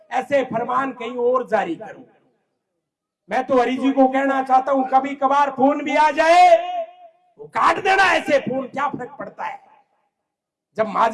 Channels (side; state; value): both; identical; correlation 1.00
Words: ऐसे फरमान कहीं और जारी करो। मैं तो हरी जी को कहना चाहता हूं, कभी कभार फोन भी आ जाए वो काट देना। ऐसे फोन क्या फर्क पड़ता है, जब